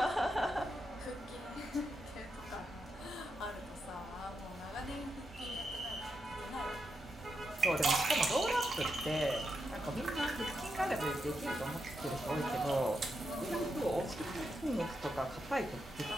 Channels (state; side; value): normal; both; correlation 0.84